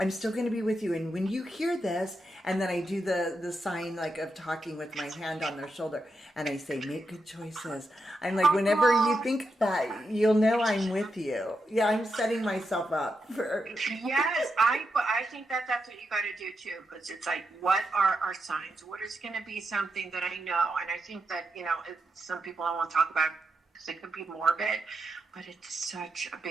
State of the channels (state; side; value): normal; both; correlation 0.85